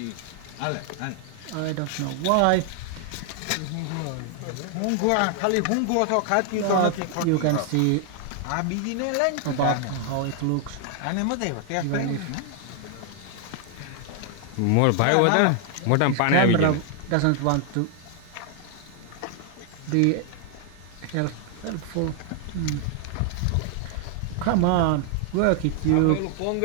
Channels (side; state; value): both; different; correlation 0.00